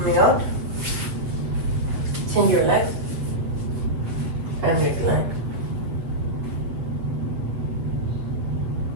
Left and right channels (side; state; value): left; late; 8.1 ms